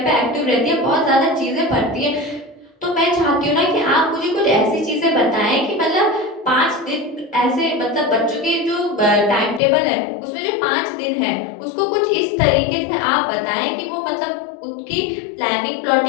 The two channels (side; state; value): right; drops out; at 9.6 s